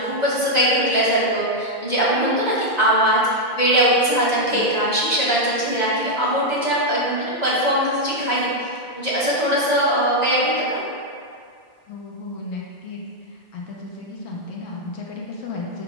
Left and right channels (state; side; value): late; right; 1.9 ms